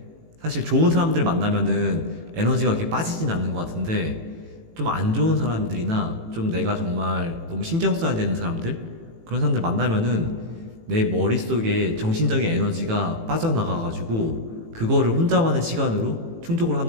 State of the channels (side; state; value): left; late; 18 ms